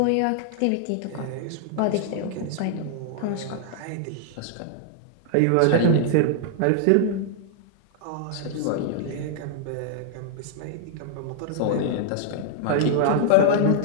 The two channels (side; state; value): both; different; correlation -0.01